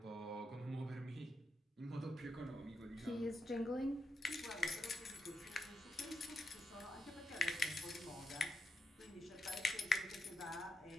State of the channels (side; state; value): both; normal; correlation 0.86